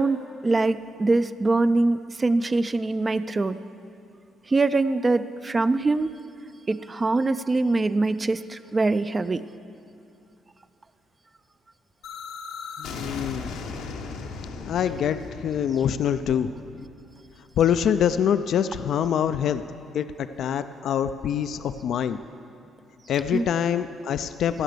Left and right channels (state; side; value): normal; both; correlation 0.78